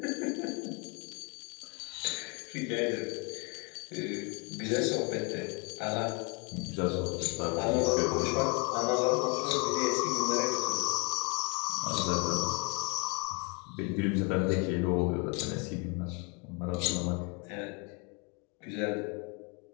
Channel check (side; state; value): right; quieter; 33.3 dB